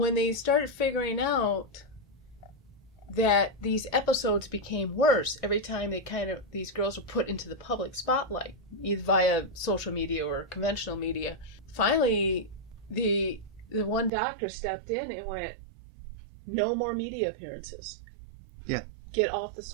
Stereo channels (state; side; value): drops out; left; at 14.1 s